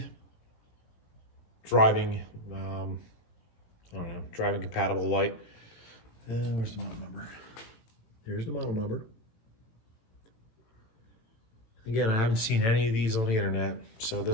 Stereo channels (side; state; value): right; late; 18 ms